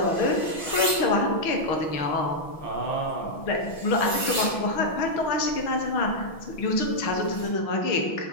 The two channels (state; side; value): late; right; 6.1 ms